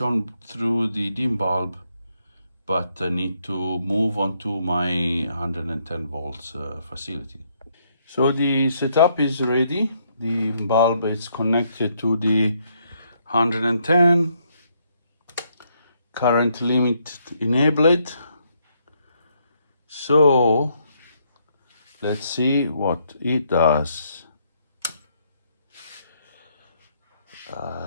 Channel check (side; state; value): both; inverted; correlation -0.73